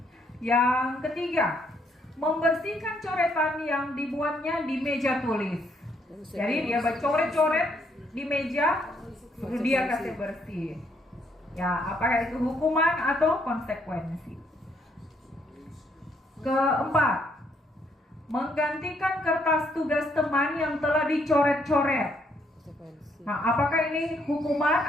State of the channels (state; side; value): normal; both; correlation 0.71